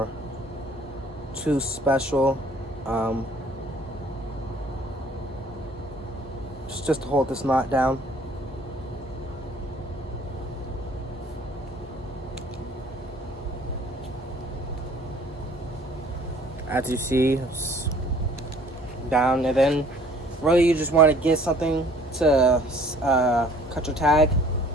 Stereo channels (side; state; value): both; normal; correlation 0.55